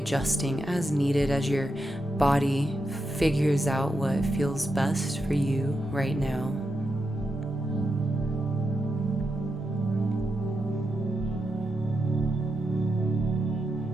as needed as your body figures out what feels best for you right now.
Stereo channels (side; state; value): both; normal; correlation 0.86